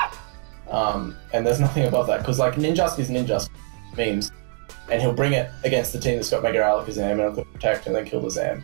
And there's nothing above that, because Ninjask is Ninjask memes. And he'll bring it against the team that's got Mega Alakazam and it'll protect and then kill the Zam,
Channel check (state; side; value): quieter; left; 36.0 dB